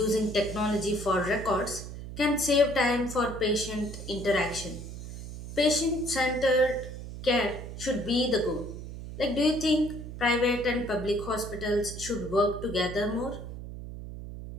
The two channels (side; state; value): right; noise; hum, 10 dB below the sound